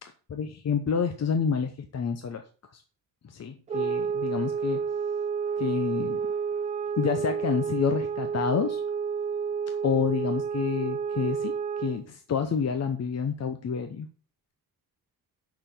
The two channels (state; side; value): normal; both; correlation 0.27